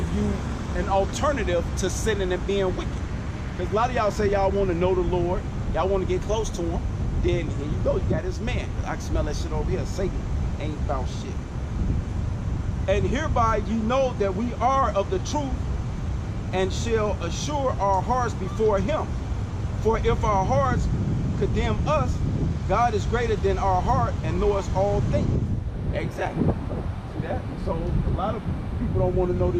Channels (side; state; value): both; identical; correlation 1.00